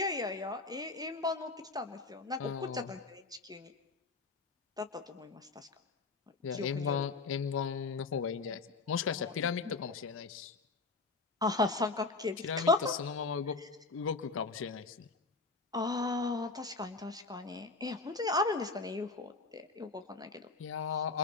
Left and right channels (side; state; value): right; quieter; 3.9 dB